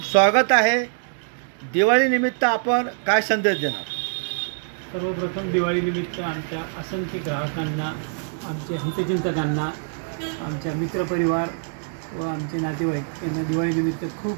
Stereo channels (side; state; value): left; silent; digital silence